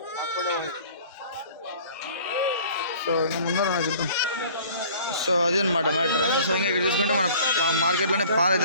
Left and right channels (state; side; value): inverted; both; correlation -0.49